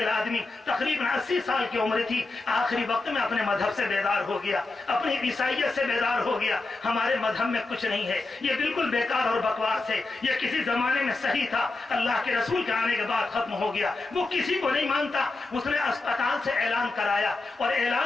آدمی، تقریباً 80 سال کی عمر تھی. آخری وقت میں اپنے مذہب سے بیدار ہو گیا، اپنی عیسائیت سے بیدار ہو گیا. ہمارے مذہب میں کچھ نہیں ہے، یہ بالکل بیکار اور بکواس ہے، یہ کسی زمانے میں صحیح تھا، اللہ کے رسول کے آنے کے بعد ختم ہو گیا. وہ کسی کو نہیں مانتا. اس نے اسپتال سے اعلان کرایا اور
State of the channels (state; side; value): quieter; right; 3.4 dB